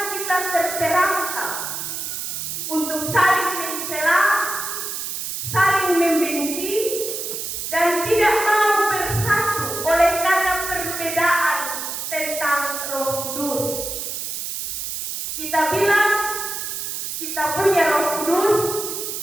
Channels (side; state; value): right; noise; hiss, 5 dB below the sound